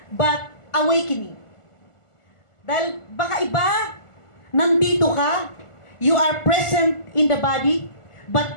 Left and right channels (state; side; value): late; right; 1.5 ms